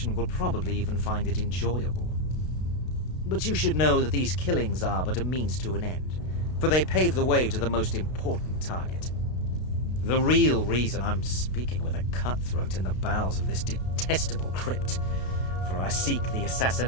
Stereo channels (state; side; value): late; right; 32 ms